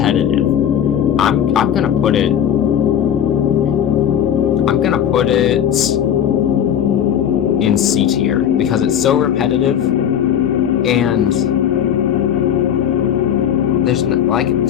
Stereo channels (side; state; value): right; quieter; 9.5 dB